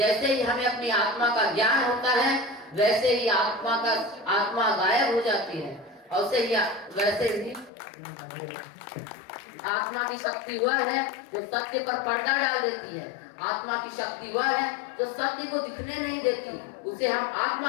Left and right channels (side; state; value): right; drops out; at 7.7 s